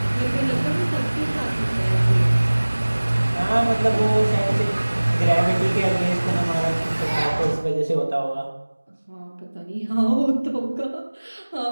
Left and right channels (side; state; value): both; inverted; correlation -1.00